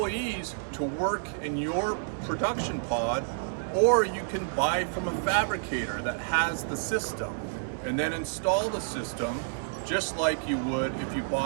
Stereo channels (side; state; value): left; silent; digital silence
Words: to work in your production pod, or you can buy from a fabricator that has the system and then install the system just like you would if you